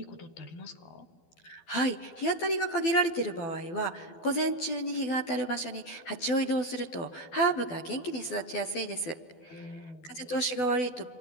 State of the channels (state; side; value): late; right; 12 ms